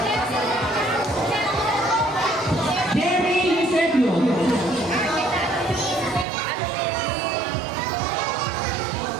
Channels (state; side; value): drops out; left; at 6.2 s